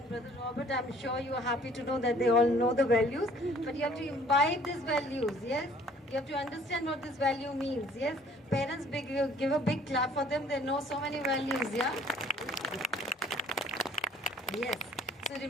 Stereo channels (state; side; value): normal; both; correlation 0.56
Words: brother Robert, I'm sure you are happy to know that they all know the values, but you have to imbibe these values, yes? You have to understand what this value means, yes? Parents, give a big clap for them, they know so many values, yeah? Yes. So